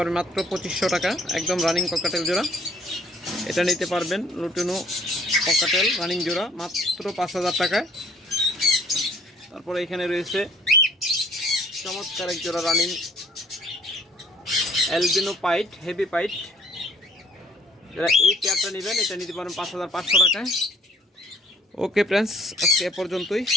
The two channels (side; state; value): both; normal; correlation 0.58